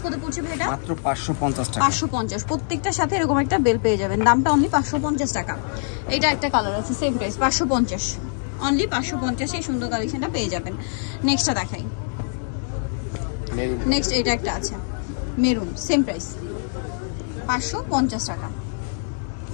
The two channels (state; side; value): silent; right; 63 dB below the other